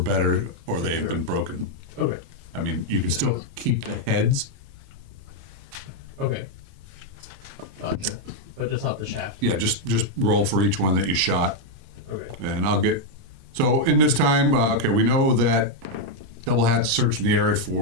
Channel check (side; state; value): left; late; 30 ms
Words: or they've Sure. been broken. Okay. I mean, you can still keep the heads. Okay. Gotcha. But just not the shaft. Yeah, just roll for each one that you shot. Okay. And I'll get. So in this time, okay, we know that Doublehat searching the area